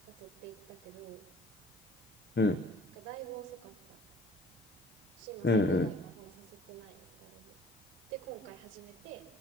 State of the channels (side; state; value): left; noise; hiss, 25 dB below the sound